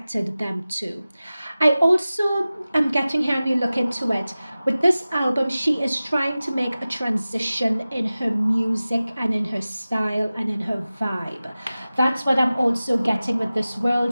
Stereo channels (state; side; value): inverted; both; correlation -0.96